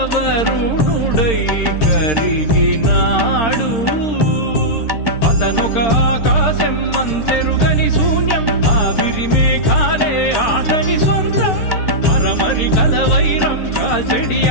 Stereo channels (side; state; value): right; late; 13 ms